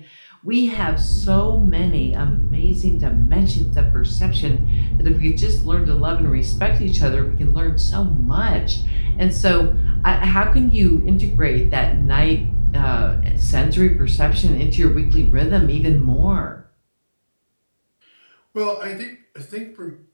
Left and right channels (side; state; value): both; inverted; correlation -1.00